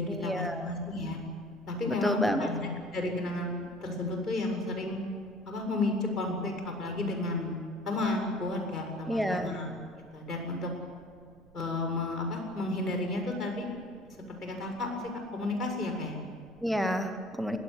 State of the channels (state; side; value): noise; right; rumble, 24 dB below the sound